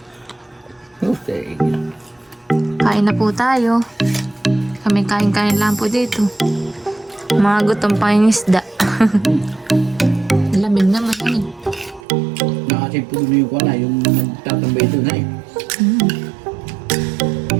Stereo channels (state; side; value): drops out; left; at 12.0 s